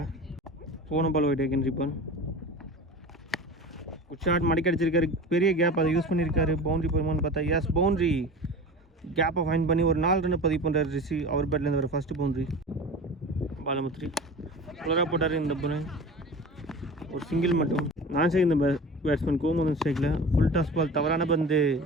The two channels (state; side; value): normal; both; correlation 0.35